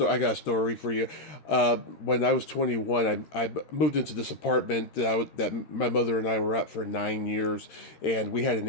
story for you. When I was 21, I moved into this apartment that my mother and I were at for 9 years, and we had an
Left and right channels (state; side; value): late; right; 13 ms